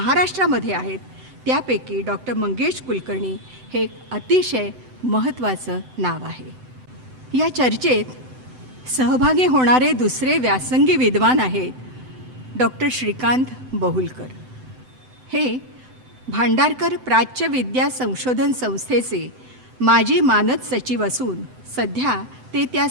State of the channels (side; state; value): left; late; 7.9 ms